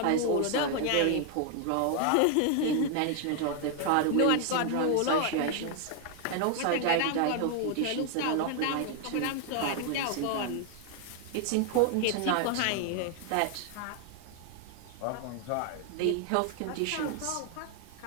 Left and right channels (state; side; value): different; both; correlation 0.00